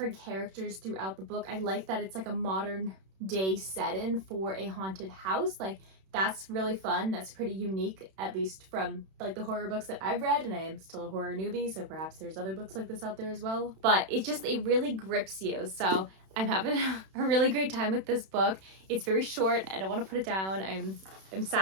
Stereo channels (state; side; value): late; left; 31 ms